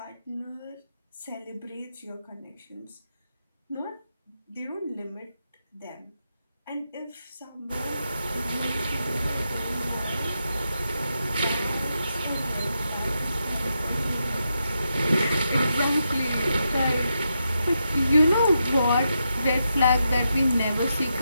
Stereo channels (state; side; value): inverted; both; correlation -0.85